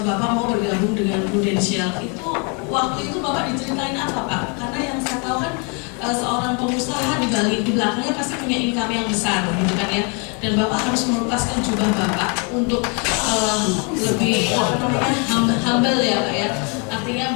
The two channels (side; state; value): right; quieter; 35.0 dB